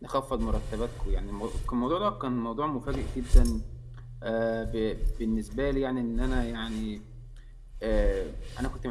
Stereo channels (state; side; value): identical; both; correlation 1.00